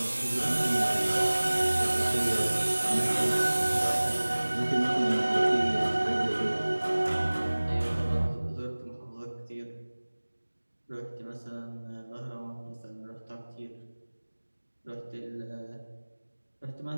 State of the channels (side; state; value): both; inverted; correlation -1.00